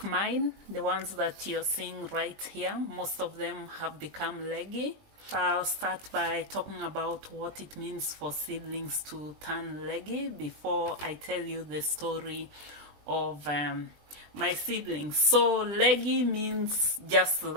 mine, the ones that you're seeing right here, most of them have become leggy. I'll start by talking about what it means for seedlings to turn leggy before I tell you the story of my seedlings. So leggy means just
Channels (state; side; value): late; left; 20 ms